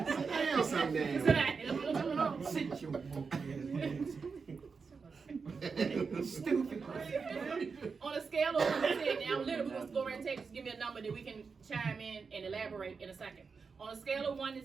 sometime. Sit your woke ass. Stupid. On a scale of 1 to 10, now literally we're going to go around and take, just give me a number that we can chime in and elaborate in a second. On a scale of 1 to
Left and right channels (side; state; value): left; quieter; 5.1 dB